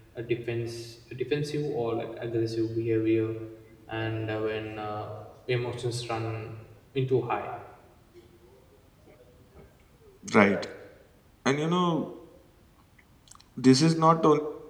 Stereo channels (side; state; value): both; identical; correlation 1.00